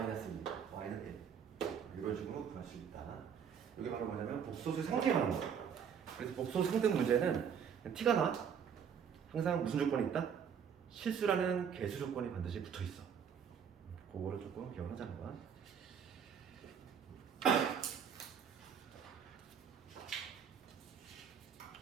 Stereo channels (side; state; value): left; quieter; 7.5 dB